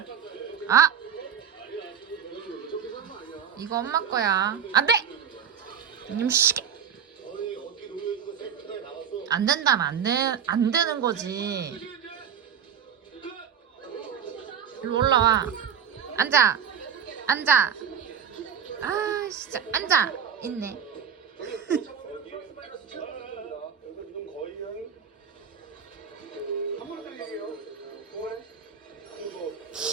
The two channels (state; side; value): quieter; left; 7.8 dB